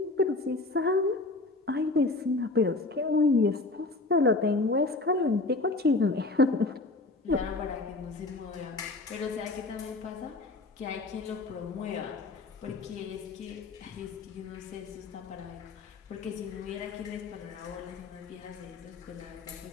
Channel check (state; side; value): quieter; right; 3.2 dB